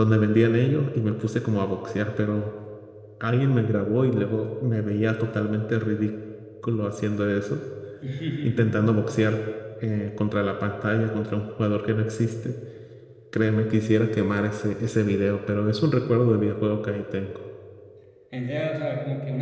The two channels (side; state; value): both; identical; correlation 1.00